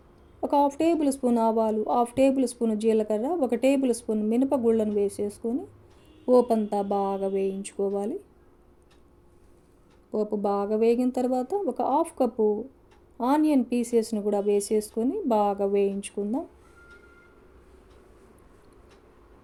ఒక 1/2 టేబుల్ స్పూన్ ఆవాలు, 1/2 టేబుల్ స్పూన్ జీలకర్ర, 1 టేబుల్ స్పూన్ మినపగుళ్ళను వేసేసుకొని పోపంతా బాగా వేయించుకోవాలి. పోపు బాగా వేగిన తర్వాత ఒక 1/2 కప్పు ఆనియన్ పీసెస్ని కూడా వేసేసుకొని బాగా వేయించుకుందాం.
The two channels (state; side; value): identical; both; correlation 1.00